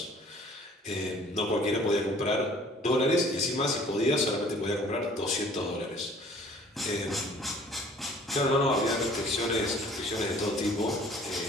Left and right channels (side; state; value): both; normal; correlation 0.53